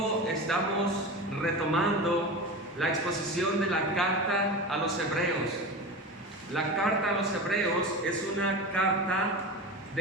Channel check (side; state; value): both; normal; correlation 0.27